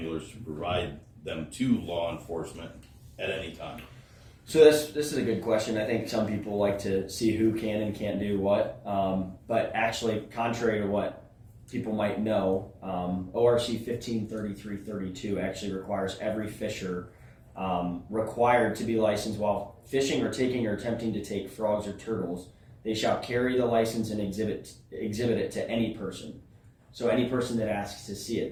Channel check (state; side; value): identical; both; correlation 1.00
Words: to provide them to law enforcement at any time? So this is a good question. I think some people like to see who can and can't do what. But actually, contrary to what people might know, ORC 153332 actually requires every fisher required to be licensed while fishing or taking or attempting to take frogs or turtles. They shall carry the license and exhibit it to any person. So any person that asks to see it,